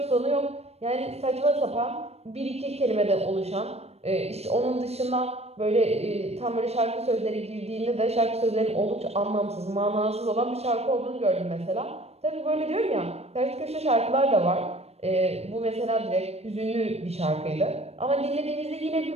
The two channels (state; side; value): late; left; 0.30 ms